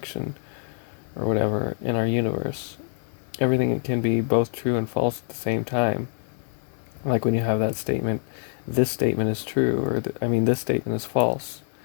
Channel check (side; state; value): right; silent; 61 dB below the other